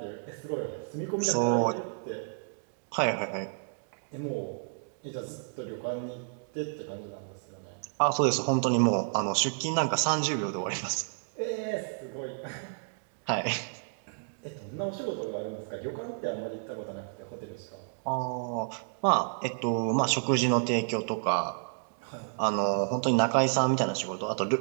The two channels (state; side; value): silent; left; digital silence